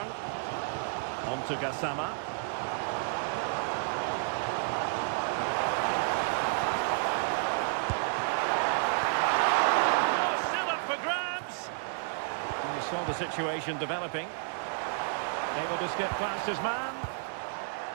On to Gassama. Saw the situation developing. Able to skip past his man.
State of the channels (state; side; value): silent; left; digital silence